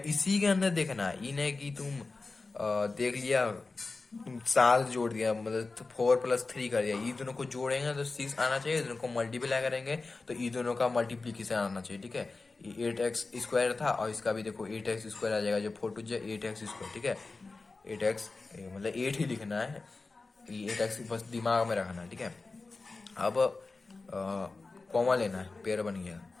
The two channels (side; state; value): right; quieter; 3.7 dB